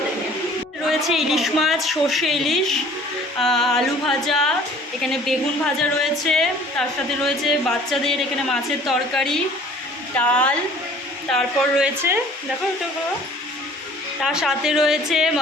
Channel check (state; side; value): normal; both; correlation 0.51